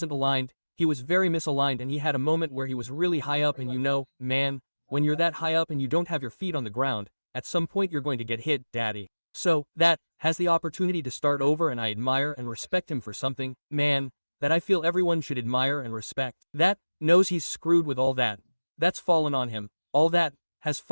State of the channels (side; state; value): both; inverted; correlation -1.00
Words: aligned. He was very misaligned and he had a moment where he was really high up and you know, man, when you're that high up and you don't have your feet on the ground, at some point you're going to get hit, daddy. So, that has the opportunity to start over and I admire and respect him for something, man, that I feel everyone should admire and respect. That knows he's screwed with all that. That's fallen on him. All that has